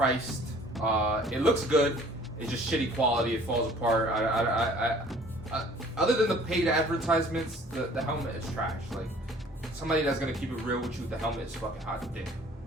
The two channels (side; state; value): both; normal; correlation 0.53